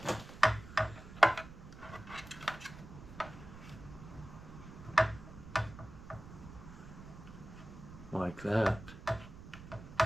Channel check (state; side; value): noise; right; rumble, 14 dB below the sound